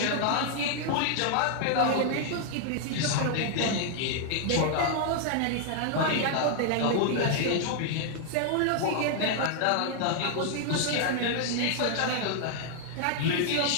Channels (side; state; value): both; different; correlation 0.00